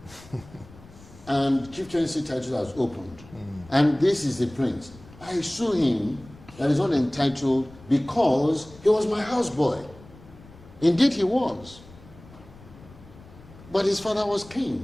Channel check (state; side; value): noise; left; rumble, 21 dB below the sound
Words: And Chief Chancellor title has opened. And this is the prince. I sue him that is not entitled because he was my houseboy. Indeed he was. But his father was